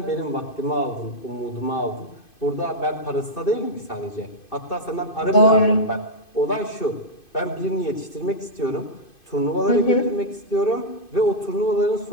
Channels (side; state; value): right; late; 2.5 ms